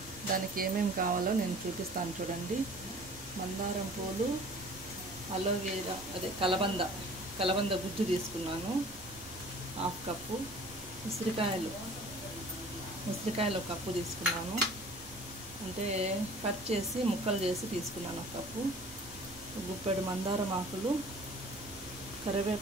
దానికి ఏమేమి కావాలో నేను చూపిస్తాను చూడండి. మందారం పూలు, అలోవేరా అదే కలబంద గుజ్జు తీసుకున్నాను 1/2 కప్పు. ఉసిరికాయలు 1 కప్పు తీసుకున్నాను. అంటే కట్ చేసి ముక్కలు చేసి తీసుకున్నాను 1 కప్పు. గుప్పెడు మందారం ఆకులు,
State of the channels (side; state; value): right; noise; rumble, 19 dB below the sound